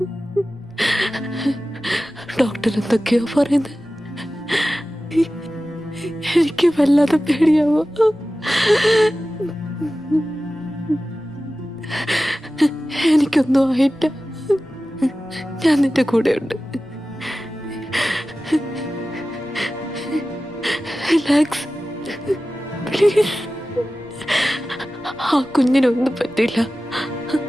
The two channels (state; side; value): noise; left; rumble, 28 dB below the sound